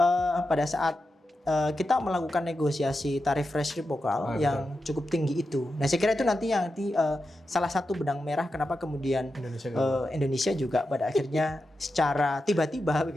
pada saat kita melakukan negosiasi tarif resiprokal yang cukup tinggi itu. Nah saya kira itu nanti salah satu benang merah kenapa kemudian Indonesia juga pada akhirnya secara tiba-tiba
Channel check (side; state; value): both; normal; correlation 0.89